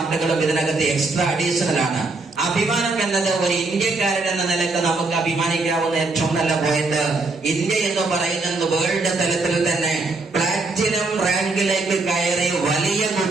ഇതിനകത്ത് എക്സ്ട്രാ അഡീഷണൽ ആണ്. ആ അഭിമാനം എന്നത് ഒരു ഇന്ത്യക്കാരൻ എന്ന നിലക്ക് നമുക്ക് അഭിമാനിക്കാവുന്ന ഏറ്റവും നല്ല പോയിന്റ്, ഇന്ത്യ എന്ന് പറയുന്നത് വേൾഡ് തലത്തിൽ തന്നെ പ്ലാറ്റിനം റാങ്കിലേക്ക് കയറി വലിയ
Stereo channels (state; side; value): quieter; left; 3.5 dB